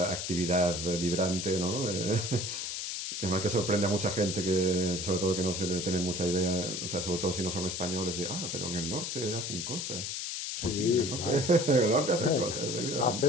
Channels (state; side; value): noise; left; hiss, 4 dB below the sound